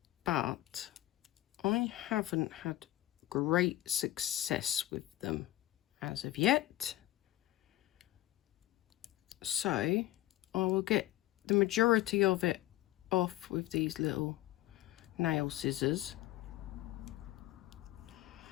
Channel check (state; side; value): quieter; right; 15.6 dB